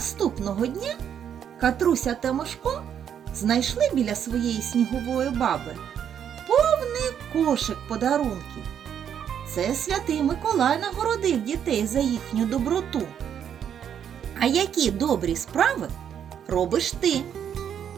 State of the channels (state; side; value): quieter; left; 8.8 dB